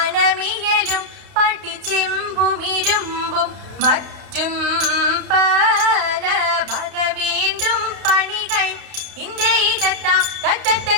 പട്ടിച്ചെമ്പുമിരുമ്പും മറ്റും പല ഭഗ വീണ്ടും പണികൾ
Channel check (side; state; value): left; late; 32 ms